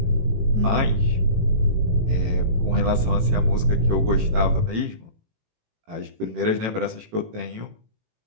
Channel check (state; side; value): late; left; 18 ms